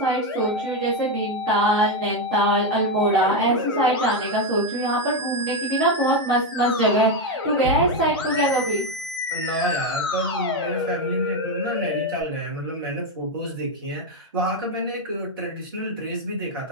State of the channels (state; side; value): normal; both; correlation 0.07